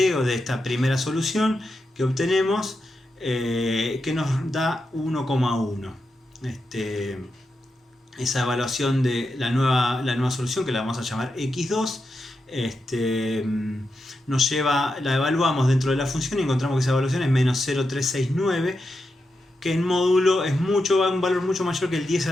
de esta primera solución que obtenemos, que nos da 1,1. Esa evaluación de la nueva solución, que la vamos a llamar x2, la evaluamos dentro de la función y encontramos que esa evaluación es menos 0,369, que en módulo es un valor mucho mayor que el 10 a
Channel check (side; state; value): both; normal; correlation 0.87